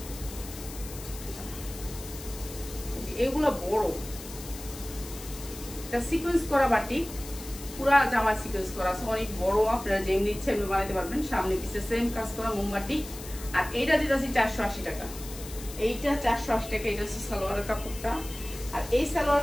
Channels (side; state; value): left; noise; hiss, 13 dB below the sound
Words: এগুলো বড়, এটা সিকোয়েন্স করা বাটিক, পুরা জামা সিকোয়েন্স করা আছে, অনেক বড়, আপনারা যেমনি ইচ্ছে এমনি বানাইতে পারবেন। সামনে পিছে সেম কাজ করা মোমবাটি। আর এইটা দিতেছি 480 টাকা, এইটা 480 টাকা। এটা হচ্ছে সালোয়ারের কাপড়টা, আর এই